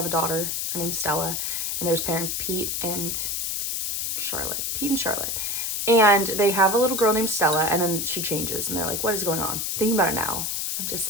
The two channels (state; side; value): noise; left; hiss, 1 dB below the sound